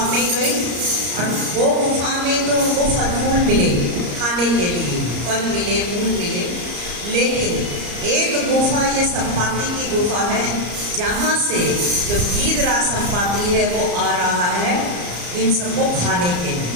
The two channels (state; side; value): late; left; 34 ms